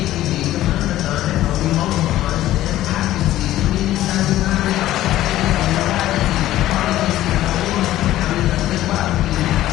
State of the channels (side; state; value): right; quieter; 14.4 dB